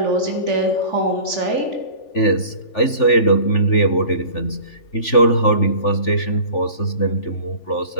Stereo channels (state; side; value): late; right; 3.4 ms